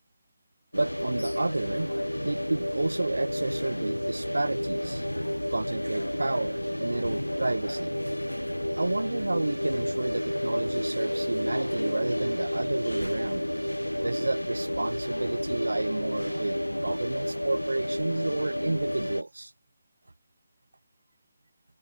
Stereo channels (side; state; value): both; inverted; correlation -0.99